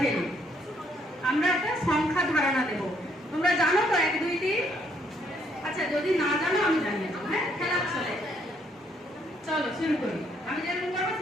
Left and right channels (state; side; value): normal; both; correlation 0.69